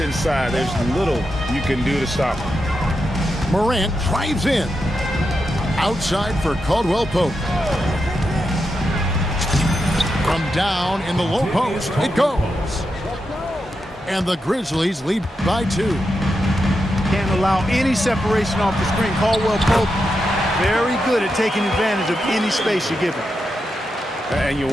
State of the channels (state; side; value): normal; both; correlation 0.86